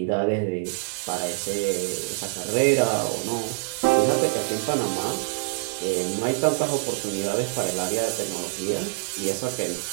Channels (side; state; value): left; quieter; 39.6 dB